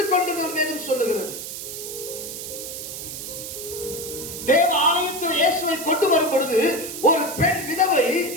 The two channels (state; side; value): noise; right; hiss, 8 dB below the sound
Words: கொண்டிருந்த வேதம் சொல்லுகிறது. தேவ ஆலயத்தில் இயேசுவை கொண்டு வரும் பொழுது ஒரு பெண் விதவை